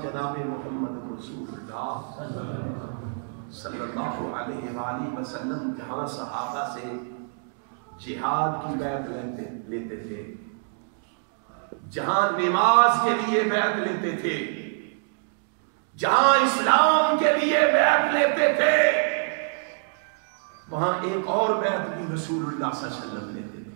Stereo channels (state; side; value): silent; left; digital silence